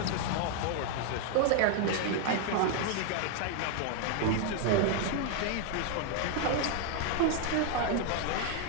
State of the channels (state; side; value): different; both; correlation 0.01